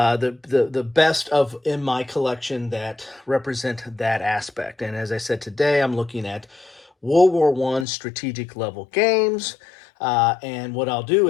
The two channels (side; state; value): right; drops out; at 7.9 s